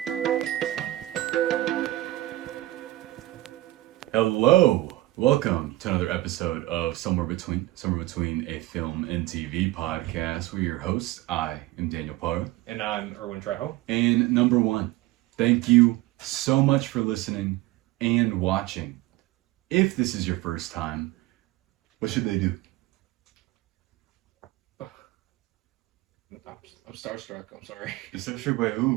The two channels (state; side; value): quieter; left; 17.2 dB